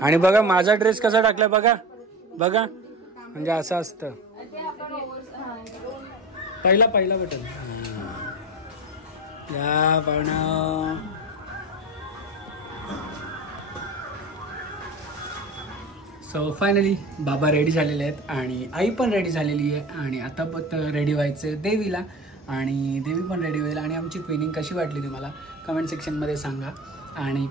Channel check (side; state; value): both; normal; correlation 0.29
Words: आणि बघा माझा ड्रेस कसा टाकलाय बघा बघा, म्हणजे असं असतं. पहिला बटन या पाहुणा. सो फायनली बाबा रेडी झालेले आहेत आणि आई पण रेडी झालेली आहे. आणि आता पण रेडी व्हायचं देवीला, आणि देवी पण रेडी होईल. आणि आमची ट्रेनिंग कशी वाटली तुम्हाला कमेंट सेक्शनमध्ये सांगा. आणि